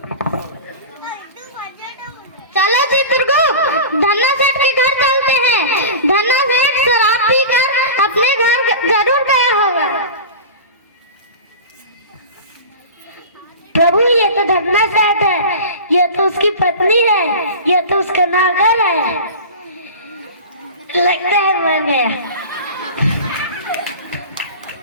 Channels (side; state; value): both; inverted; correlation -0.32